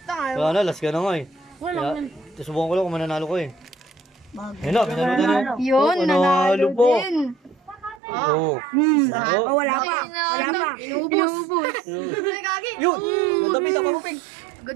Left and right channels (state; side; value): drops out; left; at 8.0 s